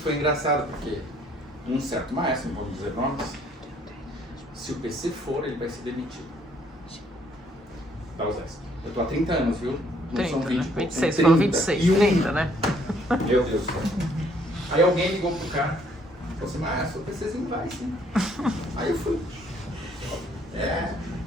engraçado, porque um certo maestro, não vamos dizer nomes, se o PC for, ele vai ser demitido. Da USESP. Eu estou há 30 anos, viu? Não 30, são 20, né? 26, 30, falou 26, 30, né? Meu Deus do céu. Aí alguém ligou pro cara, falou assim, maestro, o PCzinho vai sim. Aí eu fui.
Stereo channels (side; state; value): both; normal; correlation 0.65